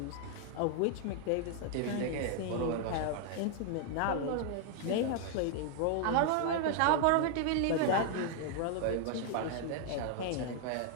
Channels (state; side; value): different; both; correlation 0.00